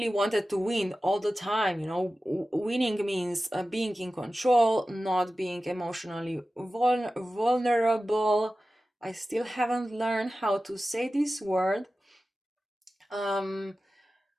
wanted to win all the time. You know, winning means being in control, not being emotionally vulnerable. I still haven't learned how to say this word.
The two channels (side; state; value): both; normal; correlation 0.95